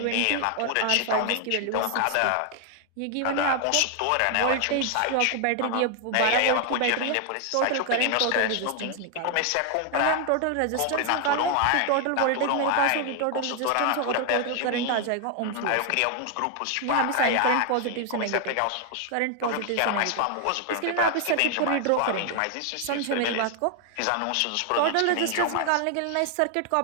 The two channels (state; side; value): different; both; correlation 0.00